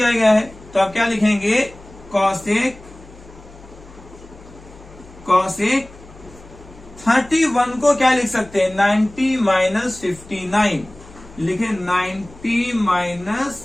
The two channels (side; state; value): left; noise; hum, 21 dB below the sound